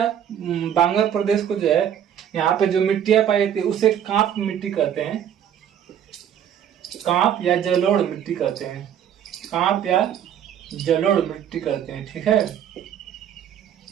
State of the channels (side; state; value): left; quieter; 9.5 dB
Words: बांगर प्रदेश को जो है यहाँ पे जो मिट्टियां पाई जाती है उसे कांप मिट्टी कहते हैं, कांप या जलोढ़ मिट्टी कहते हैं, कांप या जलोढ़ मिट्टी कहते हैं, ठीक है।